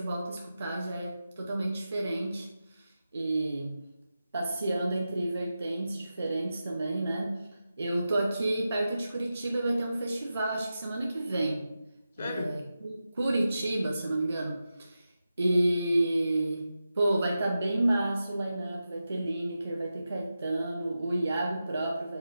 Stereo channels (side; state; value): both; inverted; correlation -0.91